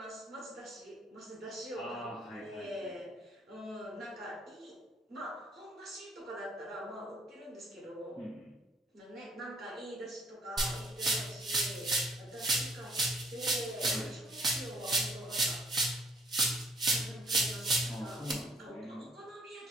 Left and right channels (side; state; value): both; normal; correlation 0.61